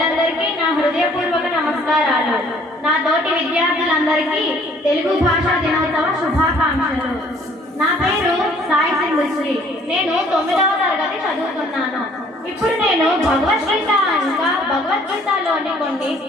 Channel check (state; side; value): normal; both; correlation 0.58